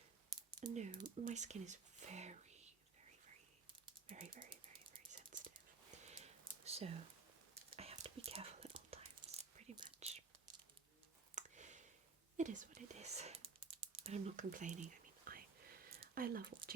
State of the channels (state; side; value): quieter; left; 4.8 dB